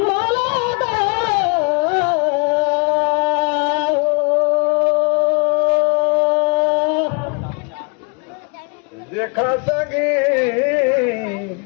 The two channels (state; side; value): quieter; right; 33.8 dB